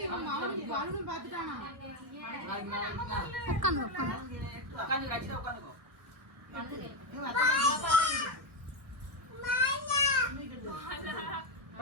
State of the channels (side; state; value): left; late; 1.6 ms